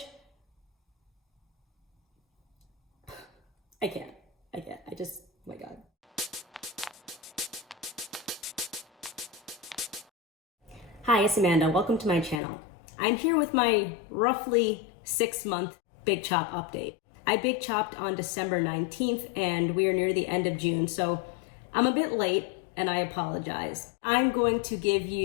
I can't. I just, oh my God. Hi, it's Amanda. Welcome to my channel. I'm here with my roughly 6-month Big Chop update. I Big Chopped on December 19th and we are near the end of June, so I'm a bit late and I apologize. I'm going to give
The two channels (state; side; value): drops out; right; at 12.4 s